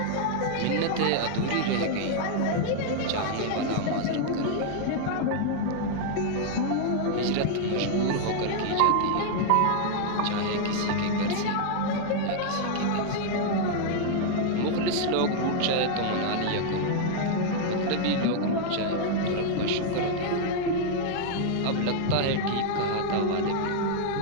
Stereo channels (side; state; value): both; different; correlation 0.00